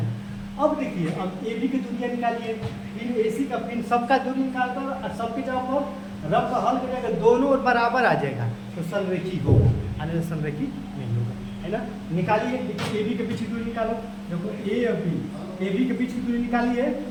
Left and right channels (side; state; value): both; identical; correlation 1.00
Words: अब देखिए, अब ए बी की दूरियाँ निकालिए, फिर ए सी का, फिर सबका दूरी निकाल कर और सबके जगह पर रफ का हल करेगा, दोनों बराबर आ जाएगा तो संरेखी होगा, आने संरेखी नहीं होगा, है ना। निकालिए, देखिए ए बी के बीच की दूरी निकालो, देखो ए और बी, ए बी के बीच की दूरी निकालिए।